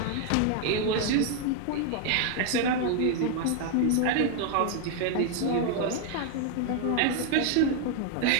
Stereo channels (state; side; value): different; both; correlation 0.00